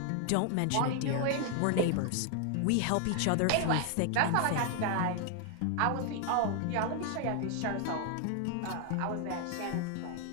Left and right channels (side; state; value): both; different; correlation 0.00